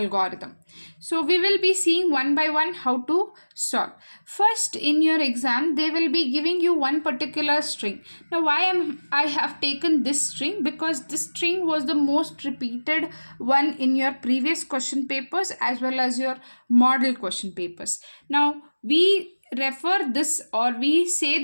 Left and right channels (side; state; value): both; inverted; correlation -1.00